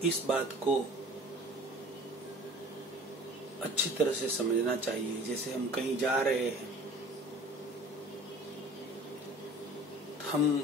इस बात को अच्छी तरह से समझना चाहिए। जैसे हम कहीं जा रहे हैं,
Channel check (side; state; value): both; normal; correlation 0.45